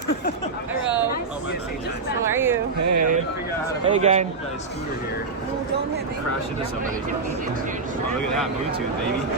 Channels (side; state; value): left; quieter; 4.2 dB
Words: How are you? Hey. Hey, gang. Scooter here. Don't hit me. Crash into somebody. Oh, look at that Bluetooth, baby.